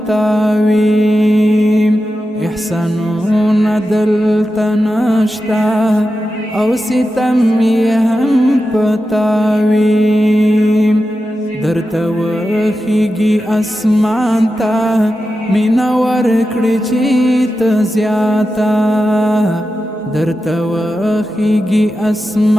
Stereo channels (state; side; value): normal; both; correlation 0.91